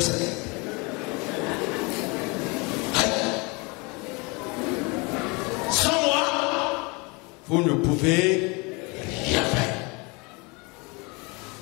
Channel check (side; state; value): right; quieter; 28.4 dB